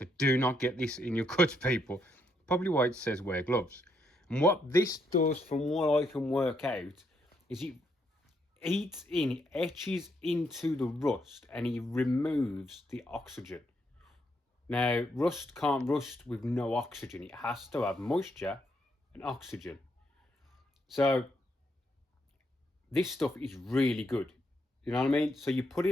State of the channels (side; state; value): both; normal; correlation 0.76